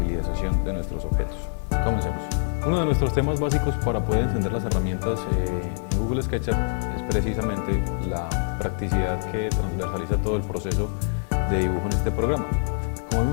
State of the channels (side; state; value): right; silent; 62 dB below the other